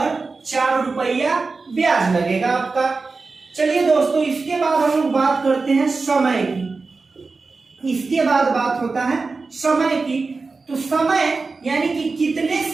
4 रुपया ब्याज लगेगा आपका। चलिए दोस्तों, इसके बाद हम लोग बात करते हैं समय की। इसके बाद बात होता है समय की। तो समय यानी कि कितने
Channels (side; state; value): left; quieter; 4.1 dB